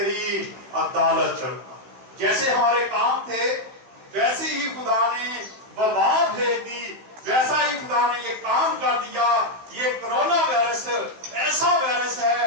عدالت کروں گا. جیسے ہمارے کام تھے ویسے ہی خدا نے وبا بھیج دی، ویسا ہی خدا نے یہ کام کر دیا. یہ کرونا وائرس ایسا وائرس ہے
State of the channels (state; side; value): late; left; 16 ms